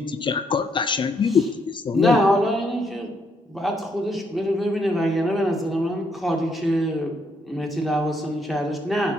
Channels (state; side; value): normal; both; correlation 0.73